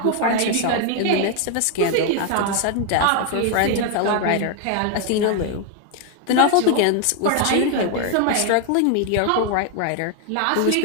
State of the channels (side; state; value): both; different; correlation 0.00